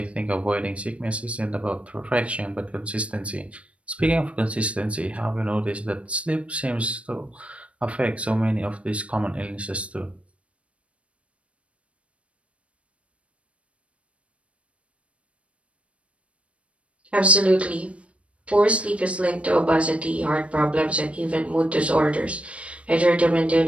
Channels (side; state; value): left; late; 0.062 ms